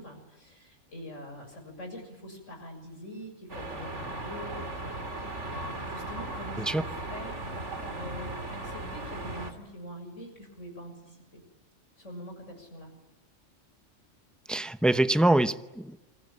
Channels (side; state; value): both; normal; correlation 0.72